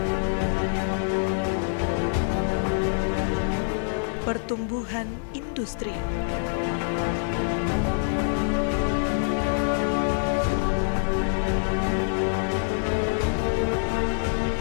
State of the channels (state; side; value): silent; right; digital silence